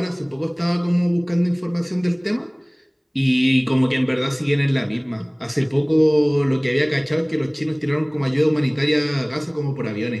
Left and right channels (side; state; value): both; identical; correlation 1.00